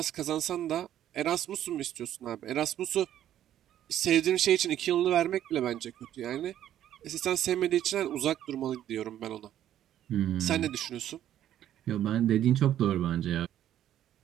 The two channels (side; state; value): left; quieter; 11.5 dB